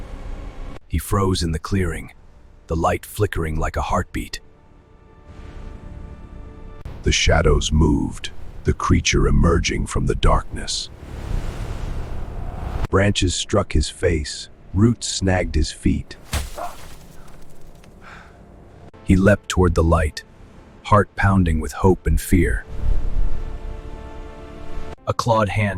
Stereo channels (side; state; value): both; identical; correlation 1.00